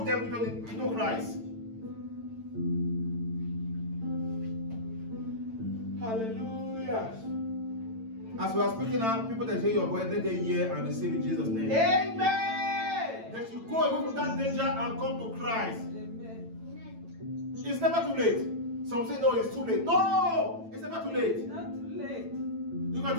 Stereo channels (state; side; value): late; left; 9.0 ms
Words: them into Christ. Hallelujah. As we are speaking now, people that hear your voice, let them hear and receive in Jesus' name. Amen. That you go away from that danger and come to Christ. Amen. It's never too late. Some say, no, it's too late. No, it's never too late. Not too late. You can